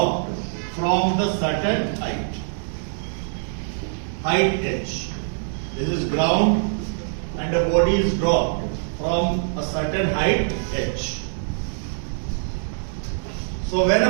from the certain height. Height h. This is ground, and a body is dropped from a certain height h. So when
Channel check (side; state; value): left; silent; digital silence